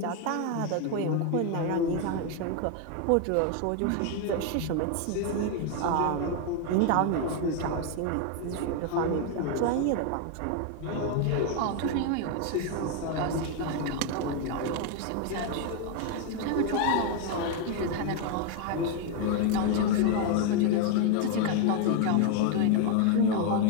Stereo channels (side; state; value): both; different; correlation 0.01